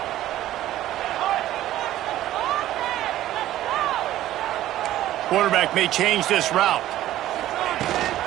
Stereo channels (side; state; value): left; quieter; 13.9 dB